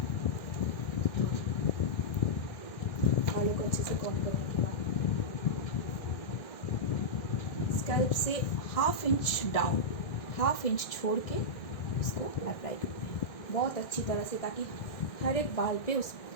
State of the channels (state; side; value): late; right; 1.6 ms